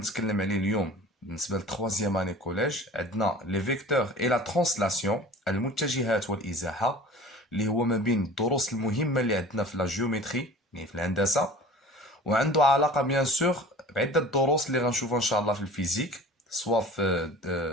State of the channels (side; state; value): both; normal; correlation 0.42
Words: عليه اليوم، بالنسبه للتخوازيام اني كوليج، عندنا لي فيكتور اي لا ترانسلاسيون، المتجهات والازاحه، اللي هو ما بين الدروس المهمه اللي عندنا في لا جيومتري، يعني في الهندسه، وعنده علاقه بيان سور بعده دروس اللي غنشوفها ان شاء الله في الفيزيك، سواء في